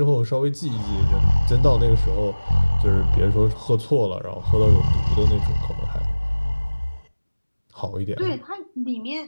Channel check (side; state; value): both; inverted; correlation -1.00